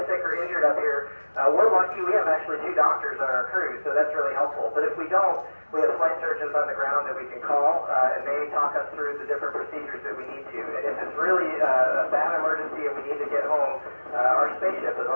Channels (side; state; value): both; inverted; correlation -1.00